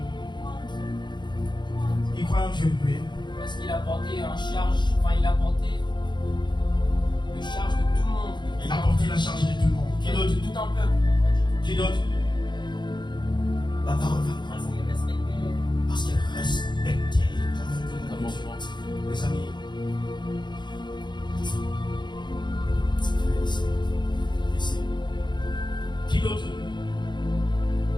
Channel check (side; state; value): right; late; 0.22 ms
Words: Il croit en Dieu, oui. Parce qu'il a porté en charge, enfin il a porté le charge de tout le monde. Il a porté la charge de tout le monde. Qui De d'autre? tout un peuple. Qui d'autre? La parole va nous Parce qu'il respectait. parce qu'elle respectait comme Dieu. Les amis, ici. Qui d'autre?